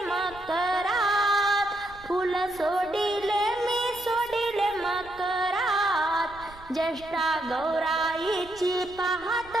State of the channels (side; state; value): right; noise; rumble, 22 dB below the sound